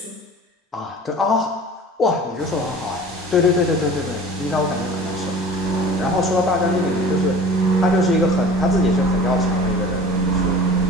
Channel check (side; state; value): both; normal; correlation 0.42